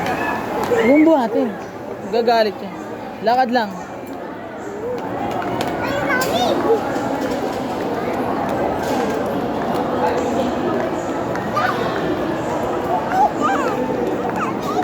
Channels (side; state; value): both; identical; correlation 1.00